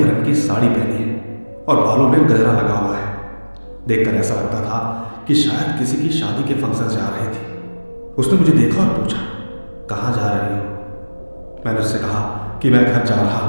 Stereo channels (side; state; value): both; inverted; correlation -1.00